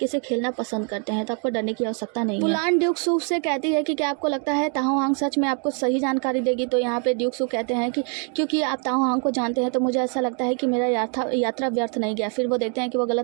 से खेलना पसंद करते हैं, तो आपको डरने की आवश्यकता नहीं है। वुलान ड्यूक सू से कहती है कि क्या आपको लगता है ताहो हांग सच में आपको सही जानकारी देगी? तो यहाँ पे ड्यूक सू कहते हैं कि क्योंकि आप ताहो हांग को जानते हैं तो मुझे ऐसा लगता है कि मेरा यात्रा व्यर्थ नहीं गया। फिर वो देखते हैं कि वो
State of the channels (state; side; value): quieter; left; 39.8 dB